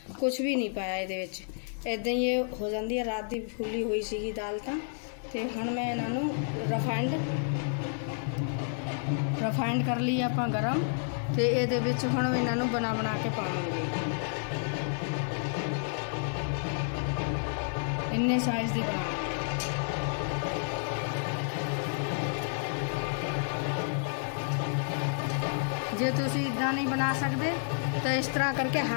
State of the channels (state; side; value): silent; right; digital silence